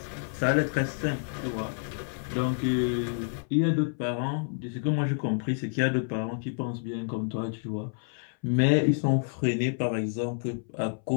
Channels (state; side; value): silent; right; 59 dB below the other